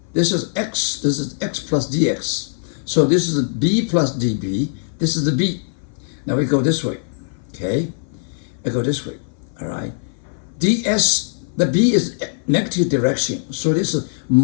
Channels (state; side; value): silent; right; 59 dB below the other